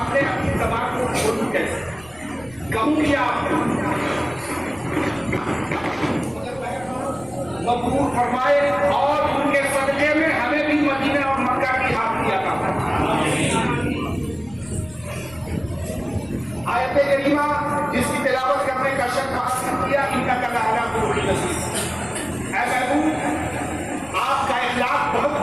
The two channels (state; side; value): noise; left; rumble, 23 dB below the sound